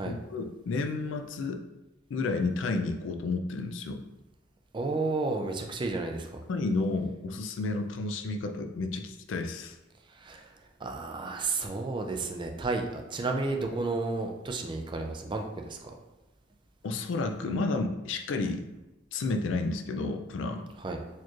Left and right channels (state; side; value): normal; both; correlation 0.55